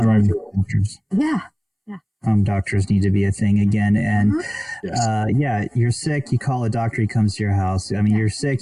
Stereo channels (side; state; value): both; identical; correlation 1.00